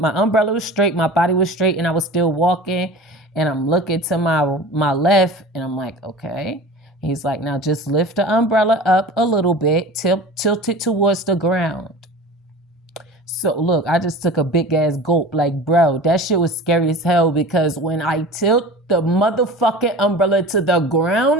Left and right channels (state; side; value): normal; both; correlation 0.37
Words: umbrella was straight. My body was straight, and I was still walking. And I'm looking to my left, and I'm like, okay. He's like, now just lift the umbrella up a little bit, tilt it towards the ground. So look, I just took a big ass gulp. Like, bro, that shit was scary as hell because when I tilt the motherfucking umbrella to the